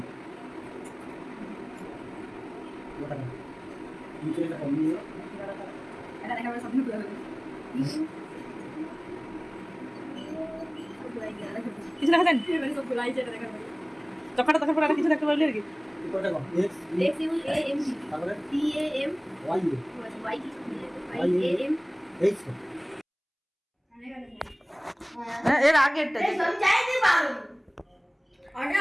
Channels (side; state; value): both; identical; correlation 1.00